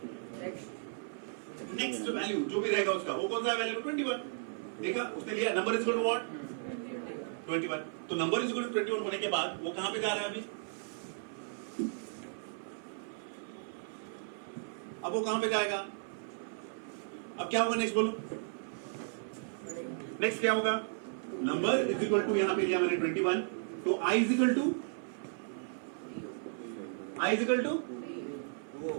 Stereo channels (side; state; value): left; silent; 54 dB below the other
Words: नेक्स्ट वैल्यू जो भी रहेगा उसका, वो कौन सा वैल्यू? 21। देखा उसने लिया, number is equal to what? 21। तो नंबर इज इक्वल टू 21 होने के बाद वो कहां पे जा रहा है अभी? अब वो कहां पे जाएगा? अब क्या होगा नेक्स्ट बोलो? नेक्स्ट क्या होगा? नंबर इज इक्वल टू, यहां पे लिया मैंने 21, तो I is equal to, I is equal to,